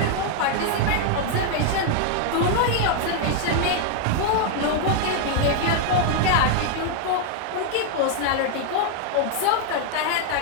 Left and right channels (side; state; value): both; different; correlation 0.00